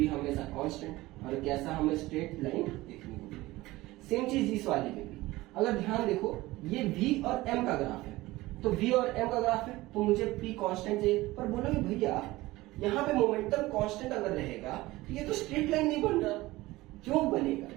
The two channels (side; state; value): left; quieter; 18.9 dB